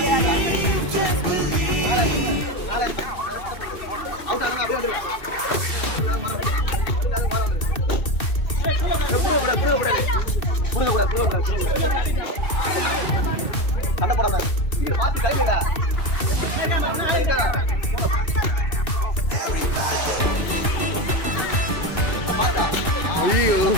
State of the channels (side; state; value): right; late; 2.6 ms